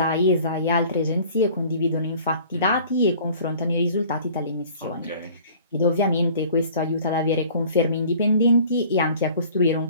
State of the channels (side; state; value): both; inverted; correlation -0.49